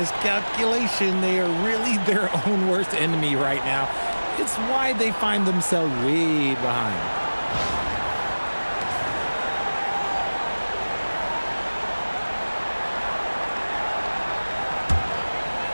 They are really their own worst enemy right now. It's why they find themselves way behind.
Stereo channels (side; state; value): both; inverted; correlation -1.00